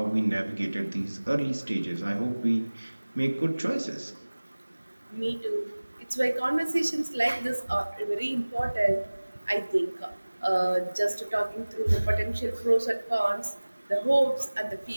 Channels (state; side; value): inverted; both; correlation -1.00